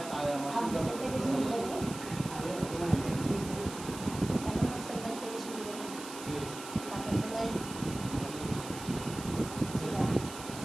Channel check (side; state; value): right; noise; hiss, 12 dB below the sound